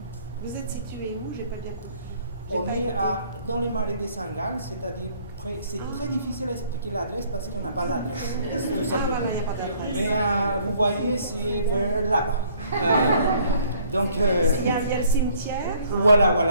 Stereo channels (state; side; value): inverted; both; correlation -0.60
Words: Vous êtes situé où? J'ai pas bien compris. On est dans les marais de Saint-Gall, c'est-à-dire c'est très difficile à expliquer l'adresse parce qu'on n'a pas l'adresse. Tout simplement. Mais vous voyez, c'est vers là-bas. Donc, il y a le cimetière.